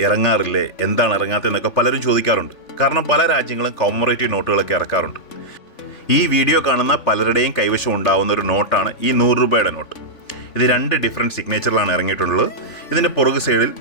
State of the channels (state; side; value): late; right; 3.5 ms